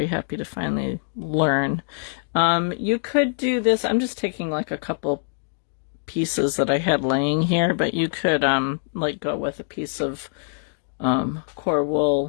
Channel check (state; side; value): silent; right; digital silence